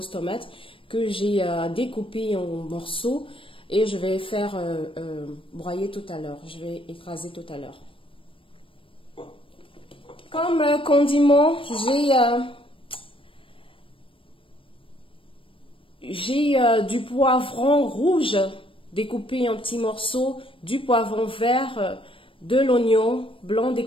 tomates que j'ai découpées en morceaux et je vais faire broyer tout à l'heure. Je vais écraser tout à l'heure. Comme condiment, j'ai du poivron rouge découpé en petits morceaux, du poivron vert, de l'oignon blanc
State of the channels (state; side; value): late; right; 0.25 ms